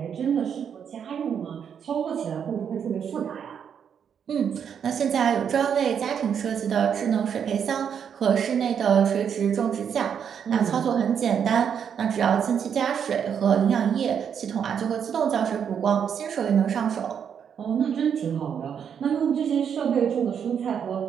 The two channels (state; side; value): quieter; left; 7.8 dB